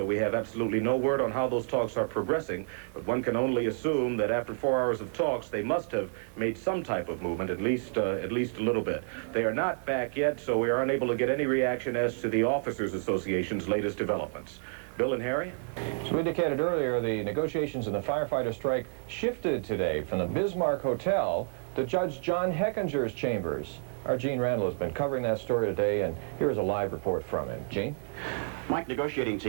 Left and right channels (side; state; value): left; silent; 58 dB below the other